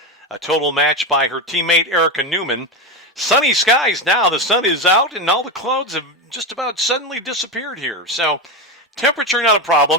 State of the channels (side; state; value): both; normal; correlation 0.15